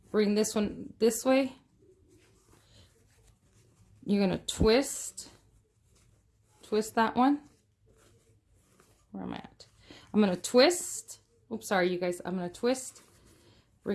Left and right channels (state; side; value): identical; both; correlation 1.00